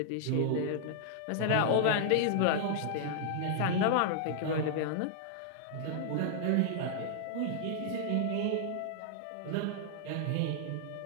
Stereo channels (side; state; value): both; different; correlation -0.01